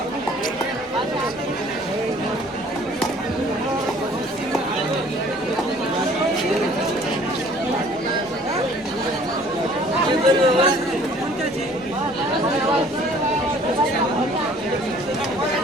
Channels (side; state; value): both; normal; correlation 0.54